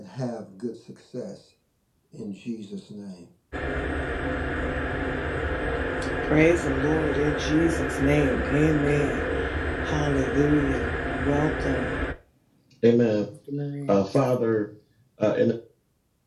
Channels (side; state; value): both; identical; correlation 1.00